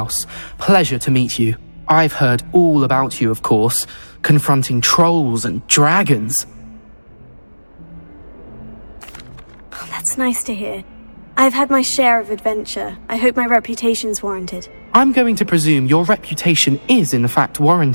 Pleasure to meet you. I've heard all about you, of course, confronting trolls and dragons. Oh, that's nice to hear. I've had my share of adventure. I hope my reputation's warranted. I'm going to presume your reputation is in fact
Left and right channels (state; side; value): inverted; both; correlation -1.00